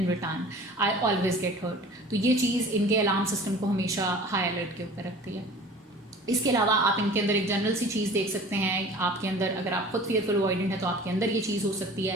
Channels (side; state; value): both; normal; correlation 0.44